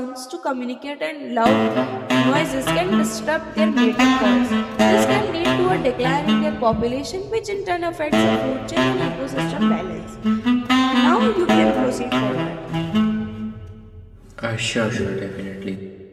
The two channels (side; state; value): both; identical; correlation 1.00